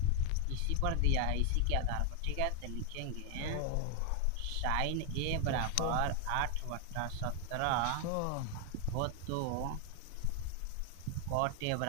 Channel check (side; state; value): both; different; correlation 0.01